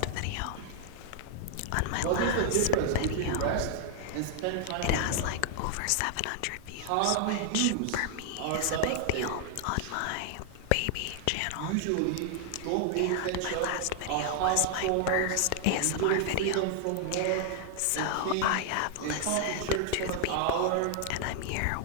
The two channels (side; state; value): both; different; correlation 0.00